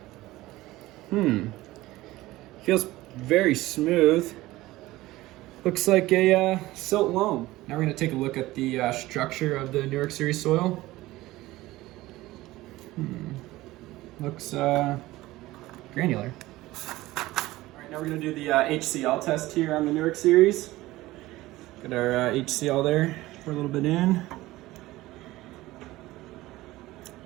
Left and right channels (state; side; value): quieter; left; 17.9 dB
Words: feels very smooth. Looks like a silt loam. Now we're going to take a look at the structure of the Newark Series soil. Looks granular. All right, now we're going to do the HCl test here on the Newark Series. Got our HCl there, pour a little bit in.